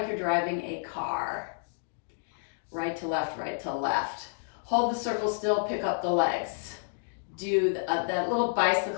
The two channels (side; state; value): right; silent; digital silence